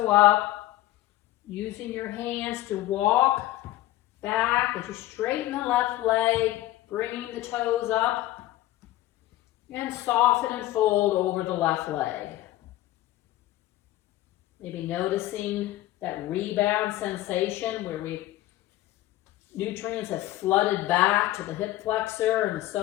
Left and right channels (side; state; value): right; quieter; 15.7 dB